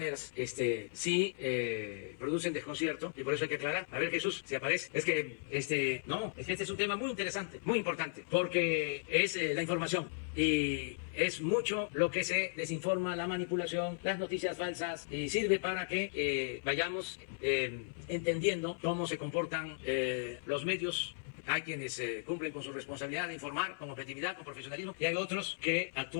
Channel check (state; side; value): silent; right; 54 dB below the other